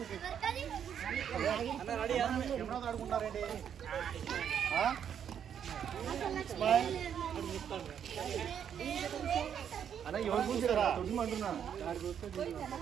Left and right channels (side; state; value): left; quieter; 8.6 dB